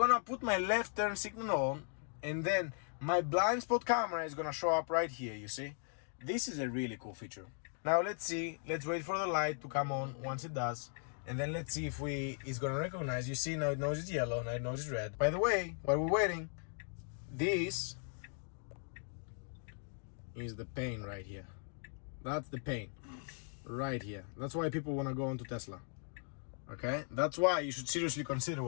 put my left turn signal on and then my blind spot camera is gonna show up right here, you see? This is a really cool feature. Now let's see, let's wait for the light to come on once it does. And then let's see if it's gonna recognize. You see now it knows it's yellow, now it knows it's red. By the way, while we're waiting, this is the pain right here. That's the pain right here. That's why people wanna go onto Tesla. Okay? That's why you should seriously consider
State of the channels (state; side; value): silent; right; 52 dB below the other